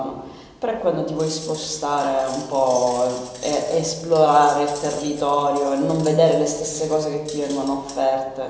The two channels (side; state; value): both; identical; correlation 1.00